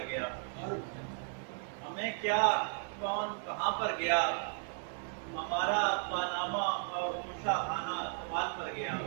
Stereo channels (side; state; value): left; silent; 54 dB below the other